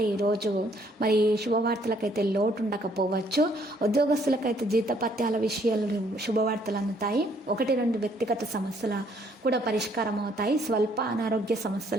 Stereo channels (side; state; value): both; normal; correlation 0.66